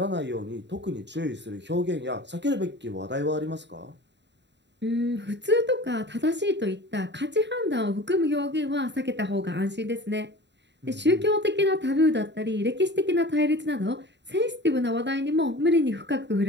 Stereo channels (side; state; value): left; late; 0.51 ms